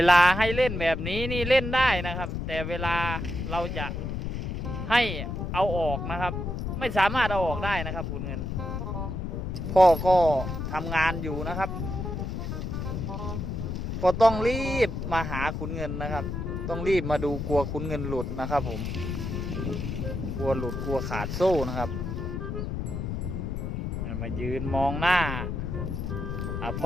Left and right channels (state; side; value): noise; left; rumble, 4 dB below the sound